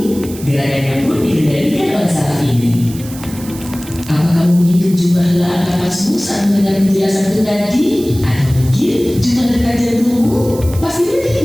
gerakannya pun dikendalikan oleh saraf ini. Apa kamu menghitung jumlah helaan napasmu saat mendengar penjelasanku tadi? Atau mungkin jumlah detak jantungmu? Pastinya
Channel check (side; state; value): right; noise; hiss, 16 dB below the sound